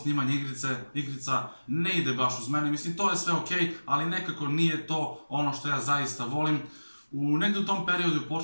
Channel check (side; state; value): both; inverted; correlation -1.00